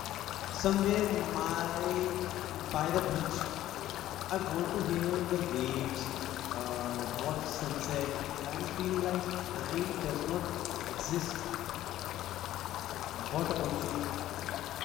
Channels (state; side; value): quieter; right; 13.6 dB